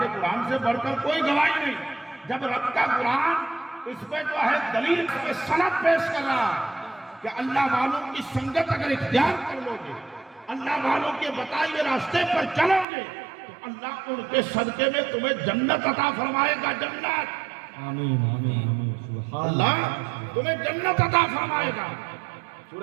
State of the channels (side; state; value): left; drops out; at 12.9 s